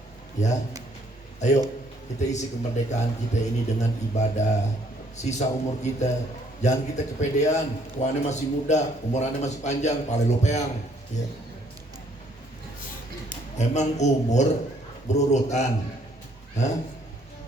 ya. Ayo kita isi kemerdekaan kita ini dengan ibadah. Sisa umur kita jangan kita kepedean. Tuannya masih muda, umurannya masih panjang, pale lopeang, ya. Emang umur berurutan? Hah?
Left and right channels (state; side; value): normal; both; correlation 0.65